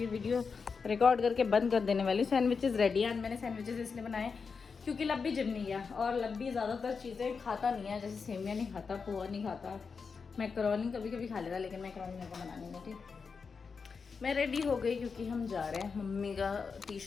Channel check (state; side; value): quieter; right; 5.3 dB